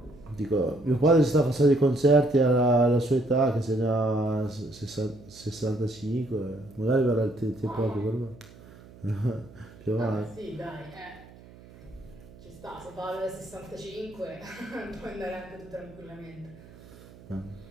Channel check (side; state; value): right; noise; hum, 21 dB below the sound